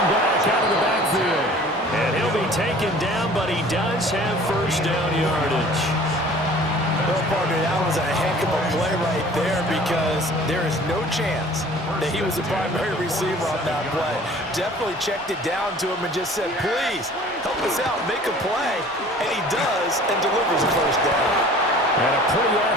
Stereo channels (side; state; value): both; normal; correlation 0.48